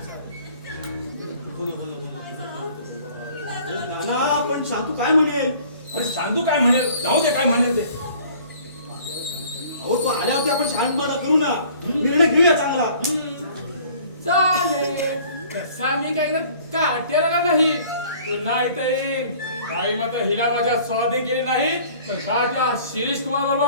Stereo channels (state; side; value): inverted; both; correlation -0.52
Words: नाना पण शांतू काय म्हणेल? पण सांगू काय म्हणेल जाऊ दे काय म्हणेल ते. अहो तो आल्यावरती आपण शांतपणा करू ना, निर्णय घेऊया चांगला. चालेल तसा मी काय काटेला नाही पुन्हा इथे येईन. काही मात्र हिला माझ्या स्वाधीन केले नाही पण राजा शिरीष कुमार